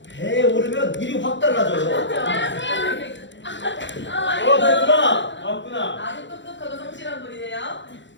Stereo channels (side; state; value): right; late; 0.53 ms